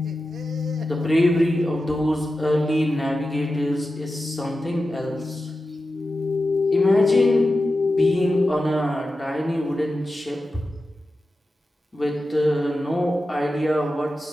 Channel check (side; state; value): both; normal; correlation 0.92